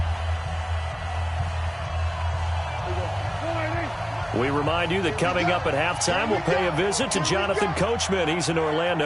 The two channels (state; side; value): identical; both; correlation 1.00